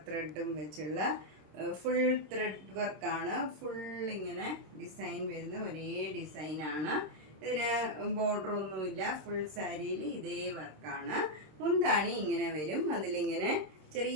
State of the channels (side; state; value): left; late; 26 ms